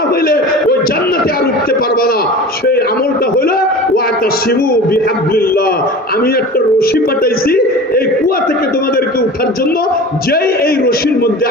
হইলে ওই জান্নাতে আর উঠতে পারবে না। সেই আমলটা হলো ওয়াতাসিমু বিহাবলিল্লাহ, আমি একটা রশি পাঠাইছি এই কুয়া থেকে তোমাদেরকে উঠার জন্য, যেই এই রশির মধ্যে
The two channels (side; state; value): both; normal; correlation 0.36